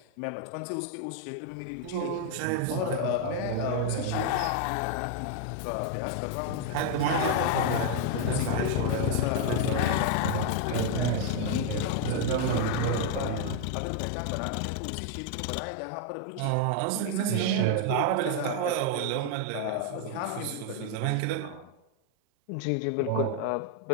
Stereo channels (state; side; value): different; both; correlation 0.00